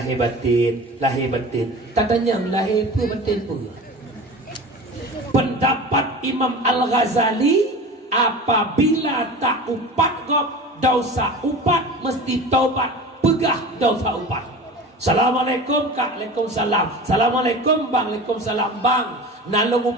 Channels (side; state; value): both; normal; correlation 0.35